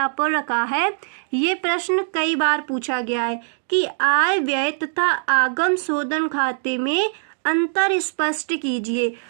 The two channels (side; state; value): left; silent; 64 dB below the other